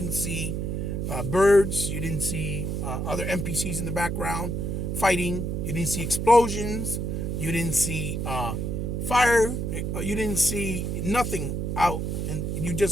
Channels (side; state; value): right; noise; hum, 1 dB below the sound